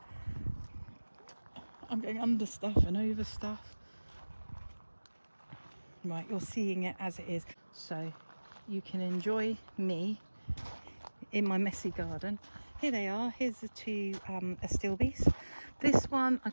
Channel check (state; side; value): inverted; both; correlation -1.00